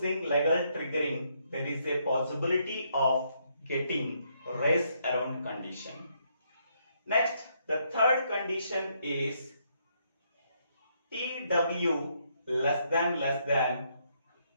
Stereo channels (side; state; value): both; inverted; correlation -0.74